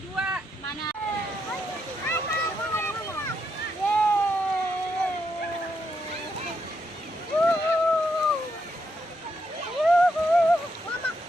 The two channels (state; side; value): normal; both; correlation 0.79